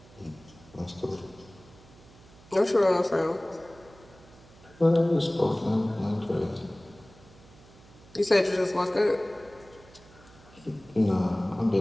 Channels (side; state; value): right; noise; hum, 24 dB below the sound